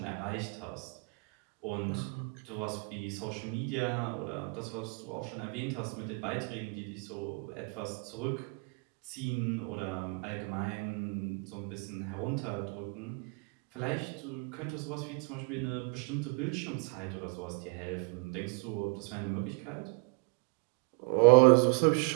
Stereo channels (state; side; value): quieter; left; 35.3 dB